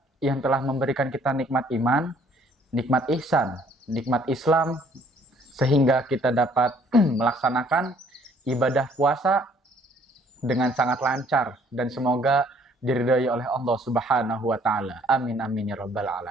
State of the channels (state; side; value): normal; both; correlation 0.61